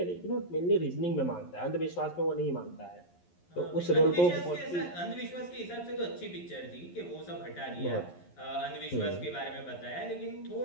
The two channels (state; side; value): late; right; 11 ms